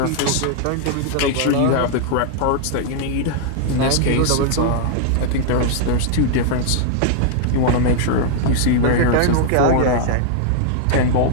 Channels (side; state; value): both; different; correlation -0.01